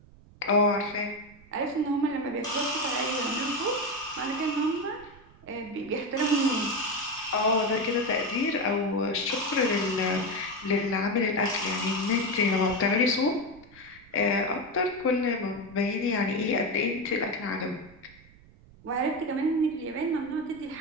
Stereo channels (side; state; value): right; noise; rumble, 24 dB below the sound